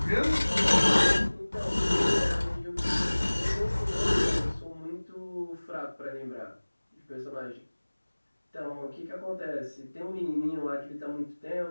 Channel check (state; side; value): inverted; both; correlation -1.00